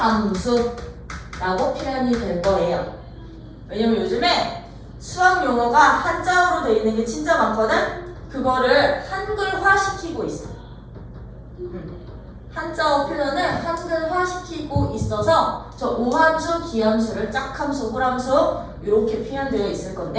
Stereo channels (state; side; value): identical; both; correlation 1.00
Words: 표현이 될 거예요. 왜냐면 요즘에 수학 용어가 한자어로 되어 있는 게 진짜 많거든? 그거를 한글화 시키고 있어. 한자어 표현을 한글화시키고 있어서 저 우함수, 기함수를 짝함수, 홀함수 이렇게 표현되어 있을